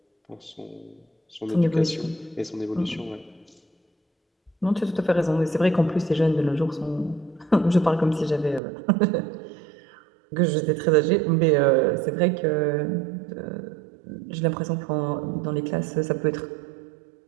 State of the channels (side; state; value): left; drops out; at 8.6 s